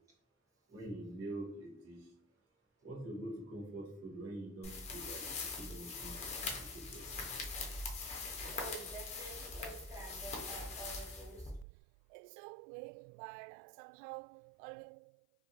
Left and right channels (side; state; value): left; drops out; at 11.7 s